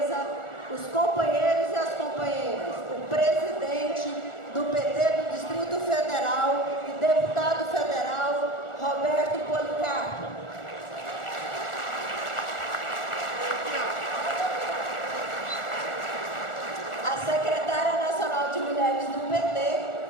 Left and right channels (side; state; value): right; late; 1.4 ms